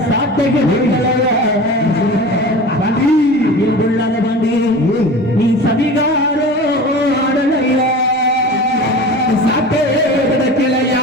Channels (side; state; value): both; normal; correlation 0.35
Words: சாட்டை கிடைக்கலையா பாண்டி நீ சதிகாரோ ஆடலையா சாட்டே கிடைக்கலையா